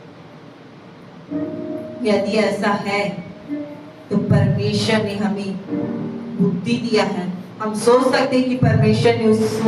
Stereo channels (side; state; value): both; identical; correlation 1.00